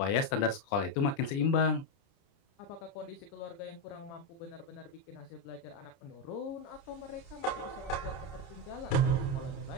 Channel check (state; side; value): late; right; 30 ms